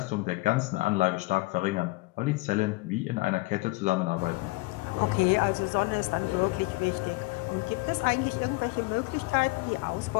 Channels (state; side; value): quieter; right; 23.8 dB